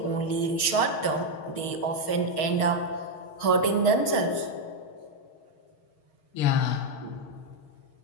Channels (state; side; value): late; right; 6.4 ms